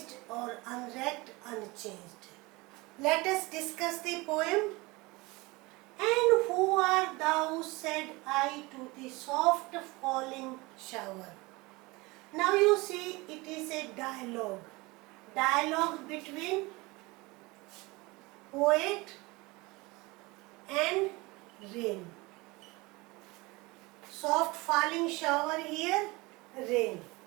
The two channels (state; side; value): quieter; left; 23.6 dB